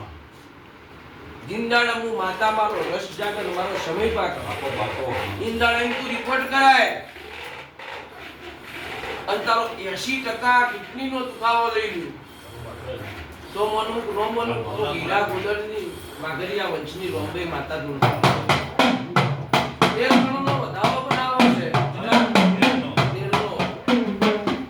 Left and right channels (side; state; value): both; identical; correlation 1.00